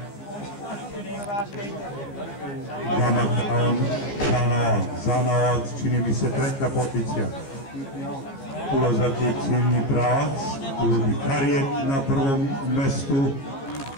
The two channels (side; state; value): right; late; 15 ms